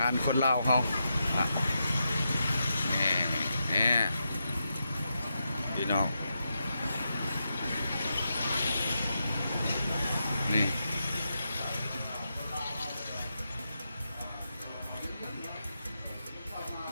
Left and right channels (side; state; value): both; inverted; correlation -0.85